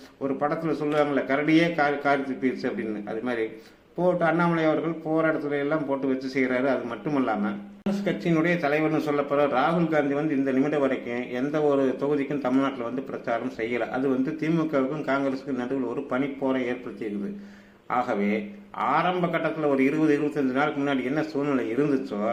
ஒரு படத்தில் சொல்லுவாங்களே கரடியே காரி துப்பிடுச்சு அப்படின்னு, அது மாதிரி போட்டு அண்ணாமலை அவர்கள் போகிற இடத்துல எல்லாம் போட்டு வச்சு செய்கிறாரு. அது மட்டும் இல்லாமல் காங்கிரஸ் கட்சியினுடைய தலைவர்னு சொல்லப்படுற ராகுல் காந்தி வந்து இந்த நிமிடம் வரைக்கும் எந்த ஒரு தொகுதிக்கும் தமிழ்நாட்டில் வந்து பிரச்சாரம் செய்யலை. அது வந்து திமுகவுக்கும் காங்கிரஸுக்கும் நடுவில் ஒரு பனிப்போரை ஏற்படுத்தியிருக்குது. ஆகவே ஆரம்ப கட்டத்தில் ஒரு 20-25 நாளுக்கு முன்னாடி என்ன சூழ்நிலை இருந்துச்சோ,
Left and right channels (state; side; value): identical; both; correlation 1.00